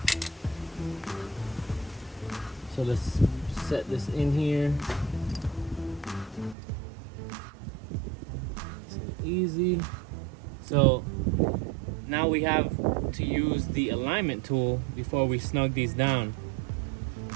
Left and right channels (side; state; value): left; drops out; at 6.6 s